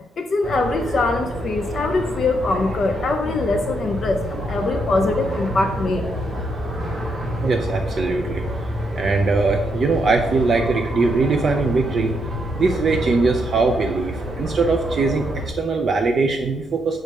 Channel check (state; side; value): normal; both; correlation 0.78